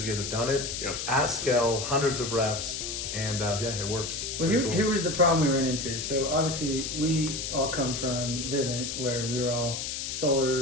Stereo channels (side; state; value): left; noise; hiss, 4 dB below the sound